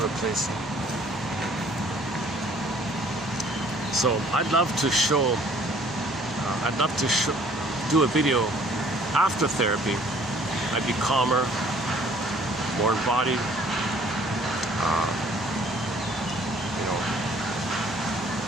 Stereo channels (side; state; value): both; normal; correlation 0.57